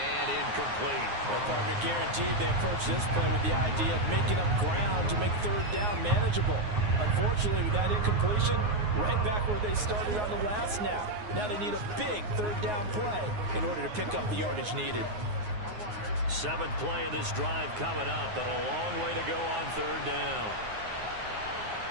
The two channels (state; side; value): late; left; 9.5 ms